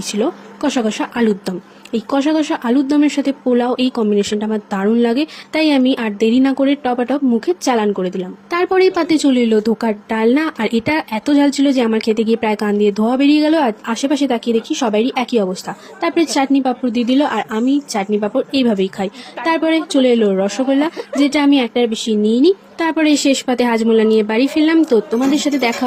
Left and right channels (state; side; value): identical; both; correlation 1.00